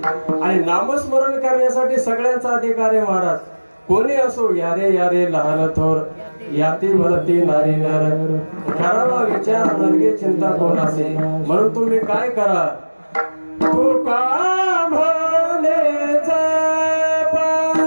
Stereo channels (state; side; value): inverted; both; correlation -1.00